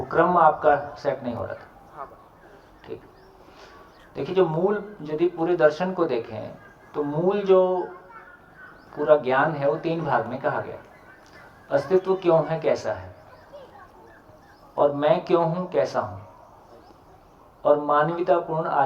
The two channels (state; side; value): identical; both; correlation 1.00